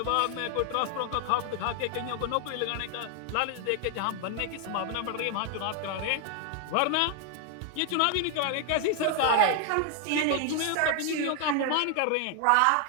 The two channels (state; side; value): different; both; correlation 0.01